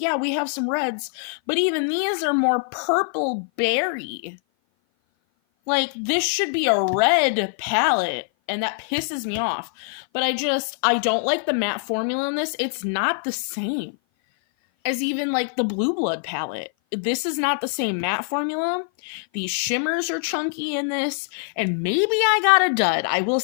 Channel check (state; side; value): silent; right; 56 dB below the other